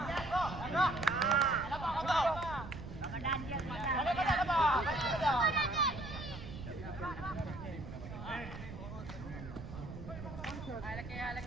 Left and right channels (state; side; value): noise; right; rumble, 10 dB below the sound